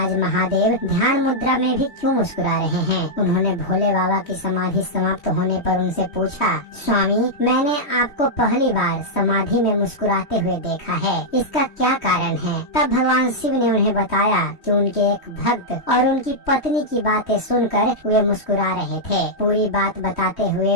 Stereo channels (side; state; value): right; late; 3.1 ms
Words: महादेव ध्यान मुद्रा में भी क्यों मुस्कुरा रहे हैं। उन्होंने भोले बाबा की समाधि समाप्त होने पर उनसे पूछा, स्वामी, मैंने आपको पहली बार समाधि में मुस्कुराते हुए देखा है, इसका क्या कारण है। तब भगवान शिव ने उन्हें बताया कि उनके एक भक्त और उनकी पत्नी की बातें सुनकर वे मुस्कुरा रहे थे। पूरी बात बताते